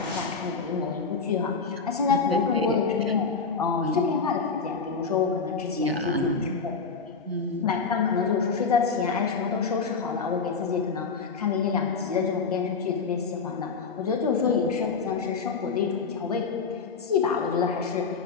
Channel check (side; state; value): right; quieter; 5.0 dB